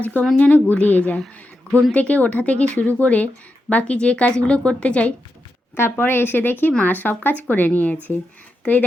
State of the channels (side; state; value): both; normal; correlation 0.87